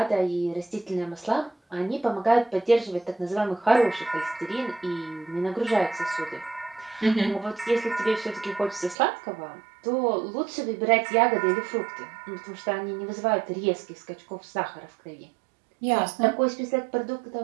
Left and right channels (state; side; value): drops out; left; at 9.0 s